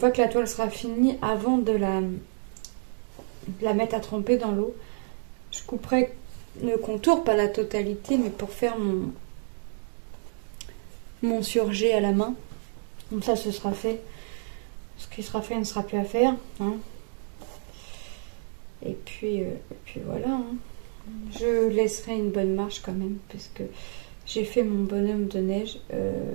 que la toile sera finie, avant de la mettre à tremper dans l'eau, je couperai le contour, pas la totalité, mais pour faire mon surjet à la main. Comme ça, ce sera fait. Ce qui sera fait ne sera plus à faire. Hein. Et puis voilà. Hein. Je laisserai une bonne marche quand même, parce que j'ai fait mon bonhomme de neige.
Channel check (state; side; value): silent; left; digital silence